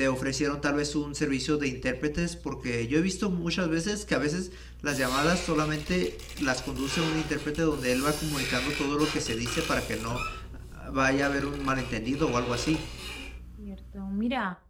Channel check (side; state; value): both; identical; correlation 1.00